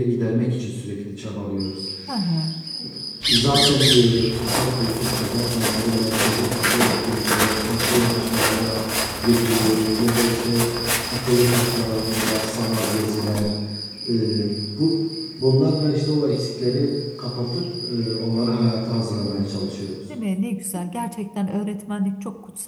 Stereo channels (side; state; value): both; identical; correlation 1.00